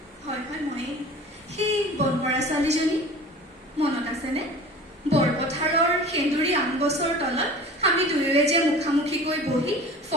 হয় ময়েই, সেই বনমৰা ছোৱালীজনী মনত আছেনে? বৰপথাৰৰ সেন্দুৰী আম গছৰ তলত আমি দুয়োৱে যে মুখামুখিকৈ বহি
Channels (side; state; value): both; normal; correlation 0.40